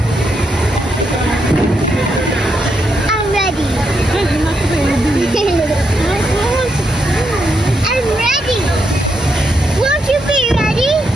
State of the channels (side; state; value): both; normal; correlation 0.80